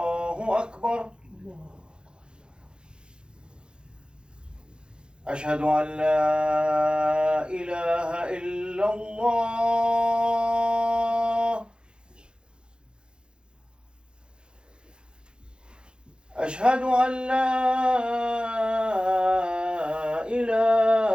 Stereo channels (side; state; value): left; late; 0.050 ms